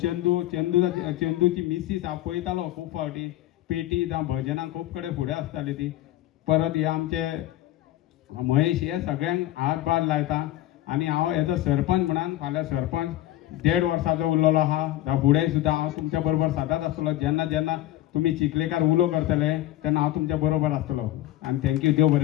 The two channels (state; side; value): quieter; right; 14.8 dB